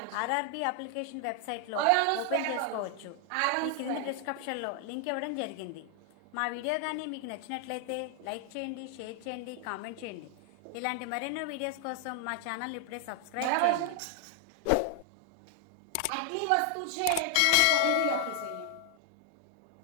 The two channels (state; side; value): different; both; correlation 0.00